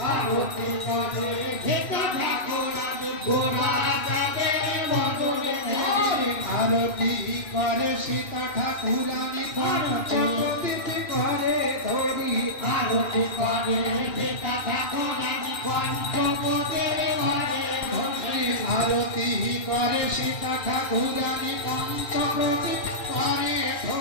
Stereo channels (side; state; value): right; late; 2.6 ms